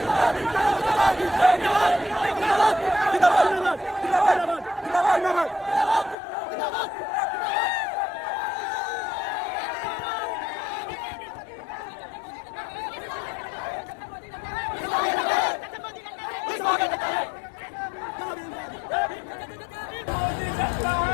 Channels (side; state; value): right; drops out; at 6.2 s